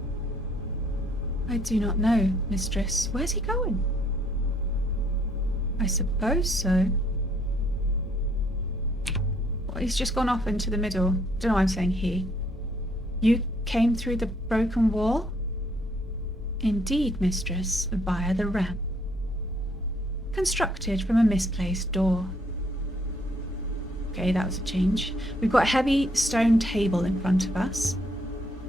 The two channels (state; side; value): normal; both; correlation 0.67